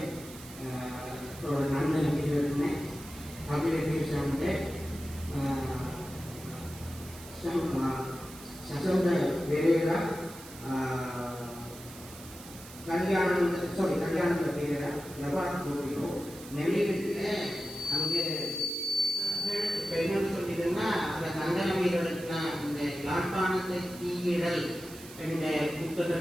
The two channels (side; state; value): right; noise; hiss, 16 dB below the sound